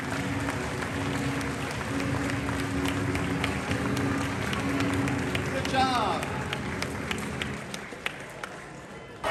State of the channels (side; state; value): both; identical; correlation 1.00